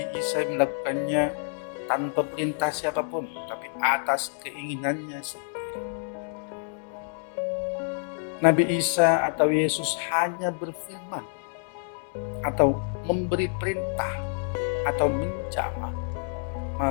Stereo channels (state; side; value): silent; right; 60 dB below the other